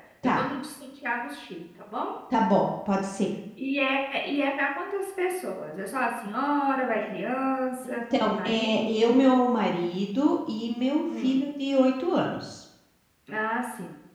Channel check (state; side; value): identical; both; correlation 1.00